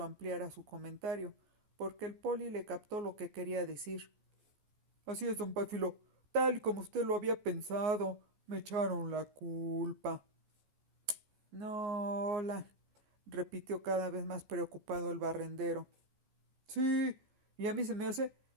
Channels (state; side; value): late; left; 14 ms